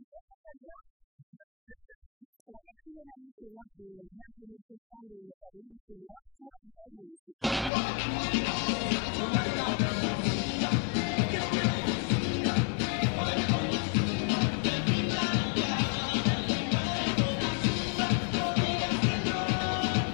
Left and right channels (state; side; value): drops out; right; at 7.7 s